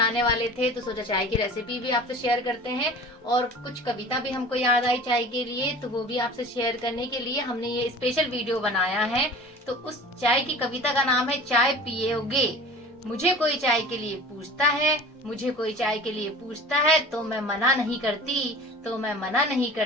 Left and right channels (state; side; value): normal; both; correlation 0.41